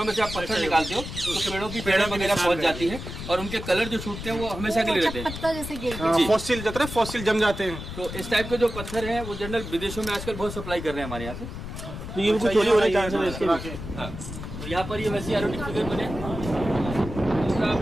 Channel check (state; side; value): noise; left; rumble, 9 dB below the sound